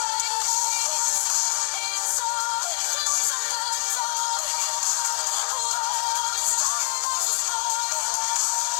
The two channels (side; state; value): right; silent; digital silence